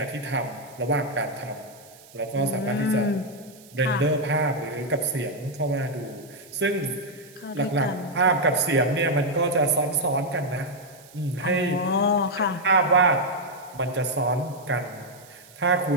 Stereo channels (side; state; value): right; noise; hiss, 23 dB below the sound